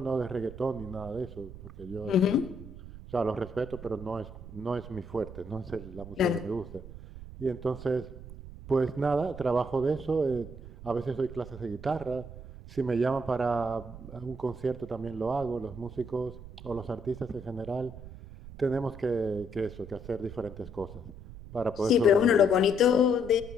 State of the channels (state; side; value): noise; right; rumble, 14 dB below the sound